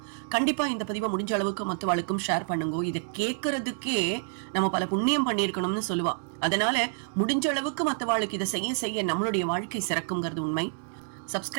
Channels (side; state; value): left; silent; digital silence